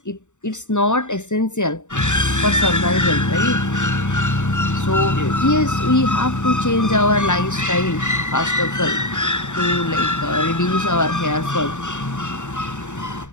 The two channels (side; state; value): right; late; 0.84 ms